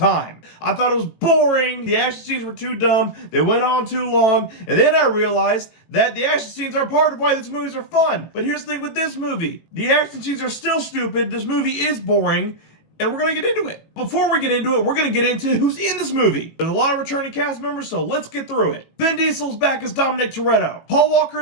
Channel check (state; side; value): late; right; 18 ms